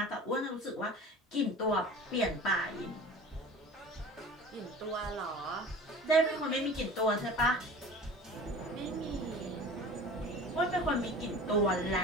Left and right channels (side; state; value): both; normal; correlation 0.39